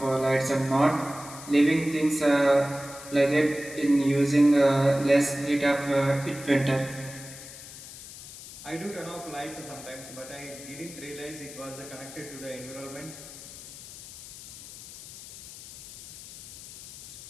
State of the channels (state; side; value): noise; left; hiss, 15 dB below the sound